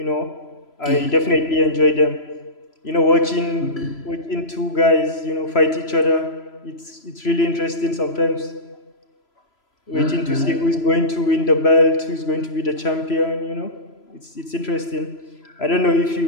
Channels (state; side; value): late; right; 3.0 ms